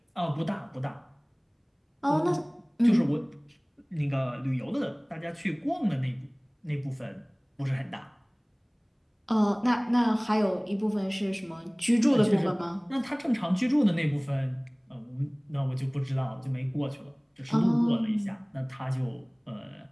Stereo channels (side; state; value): both; identical; correlation 1.00